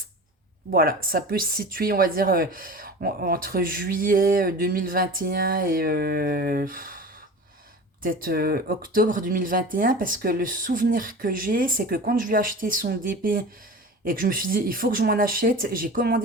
voilà, ça peut se situer, on va dire, entre juillet 2021 et peut-être octobre 2021, parce que le souvenir que j'ai, c'est que quand je lui ai acheté son DP et que je me suis dit, il faut que je m'en achète, j'ai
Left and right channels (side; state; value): both; normal; correlation 0.35